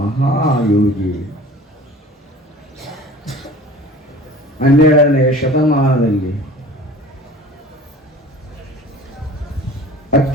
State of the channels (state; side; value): normal; both; correlation 0.43